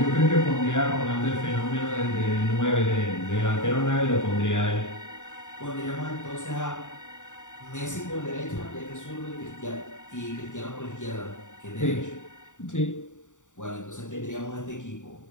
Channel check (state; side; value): late; right; 0.86 ms